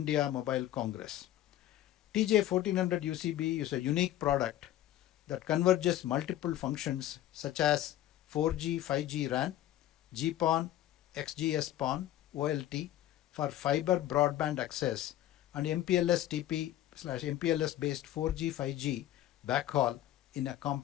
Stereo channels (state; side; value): quieter; right; 13.1 dB